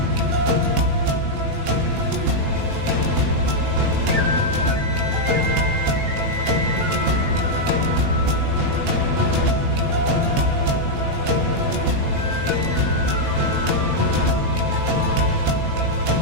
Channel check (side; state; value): left; late; 19 ms